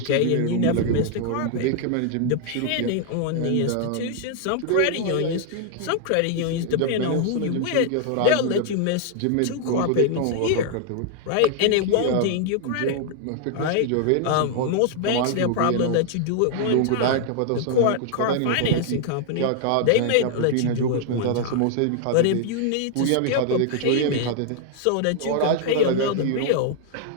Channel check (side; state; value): both; different; correlation 0.00